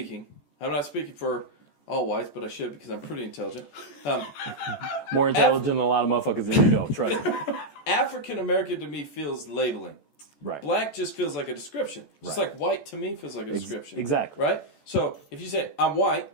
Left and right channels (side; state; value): right; late; 14 ms